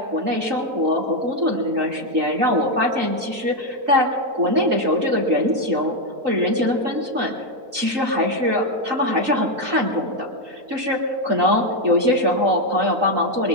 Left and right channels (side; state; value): left; late; 3.8 ms